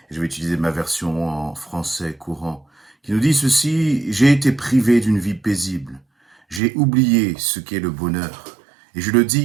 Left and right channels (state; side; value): drops out; left; at 6.6 s